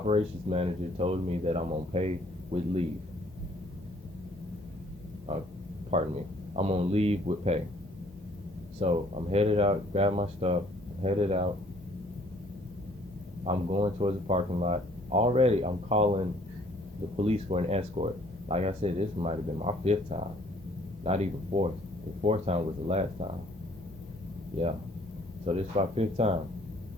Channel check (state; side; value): normal; both; correlation 0.60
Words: manager told me that I'm on pay with leave. Uh, pardon me. I'm on leave with pay. So I'm headed out, grab my stuff, headed out. I'm going towards the parking lot. Already, I'm calling the police for an escort. Like I said, this might have been my fifth time, not even fourth. The fourth time was the last time. Yeah. So this is my fifth time.